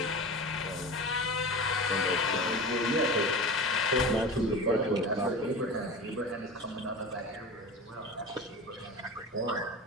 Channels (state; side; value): normal; both; correlation 0.31